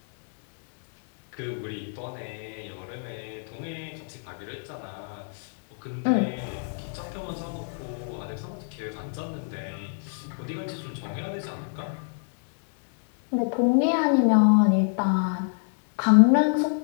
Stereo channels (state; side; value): silent; right; digital silence